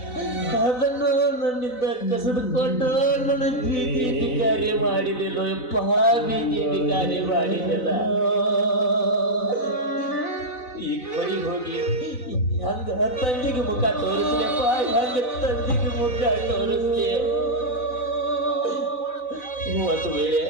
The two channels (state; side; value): late; right; 4.0 ms